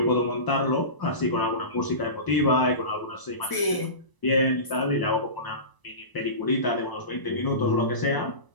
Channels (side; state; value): right; late; 1.0 ms